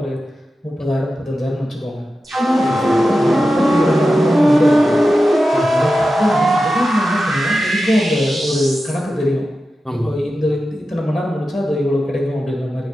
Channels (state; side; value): normal; both; correlation 0.92